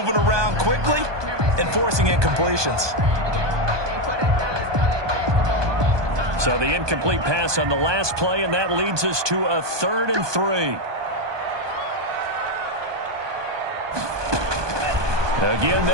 around quickly and forcing incompletions. So the incomplete pass on the last play, and that leads us to a 3rd and 3. Again,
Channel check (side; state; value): left; late; 1.2 ms